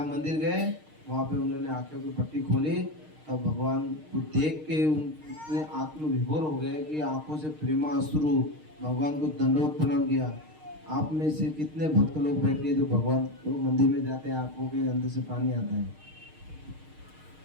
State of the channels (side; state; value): left; late; 6.5 ms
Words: मंदिर गए वहाँ पे उन्होंने आंखों की पट्टी खोली, तब भगवान को देख के उनने आत्मविभोर हो गए कि आंखों से प्रेमा अश्रु, भगवान को दंडवत प्रणाम किया। आप में से कितने भक्त लोग बैठे जो भगवान को मंदिर में जाते हैं, आंखों के अंदर से पानी आता है,